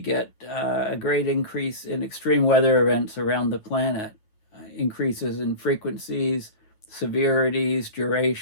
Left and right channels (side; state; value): right; late; 9.3 ms